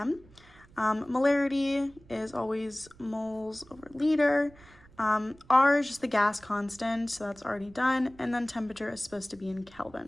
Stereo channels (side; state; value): right; noise; rumble, 25 dB below the sound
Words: Molarity is always moles over liter. R is just the gas constant, so that's already done. And then temperature is supposed to be in